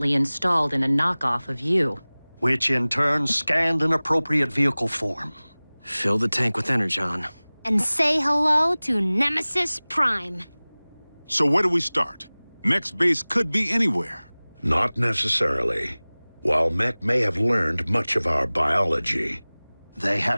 installed in a knockoff of you. Which in turn scanned an appropriate vehicle form. Fill the tank with Energon. And say hello to Nemesis Prime. So where do we start? Mech's base could be anywhere. Not necessarily. While Mech may have learned much of our biology, they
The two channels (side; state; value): both; inverted; correlation -1.00